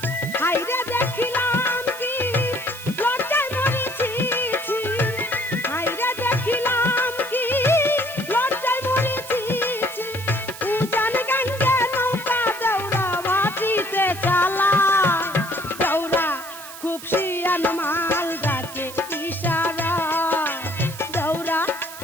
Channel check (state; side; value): noise; right; hiss, 14 dB below the sound